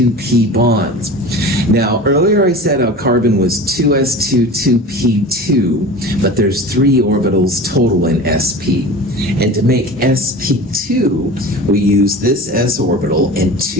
bonds. Now, earlier I said our carbon was 2s2, 2p2, but there's 3 orbitals total in sp. And to make sp2, we use this s orbital and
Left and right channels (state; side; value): normal; both; correlation 0.35